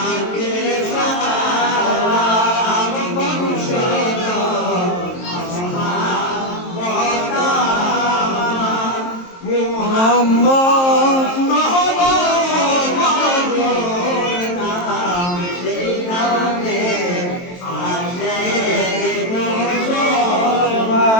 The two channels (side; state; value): right; late; 23 ms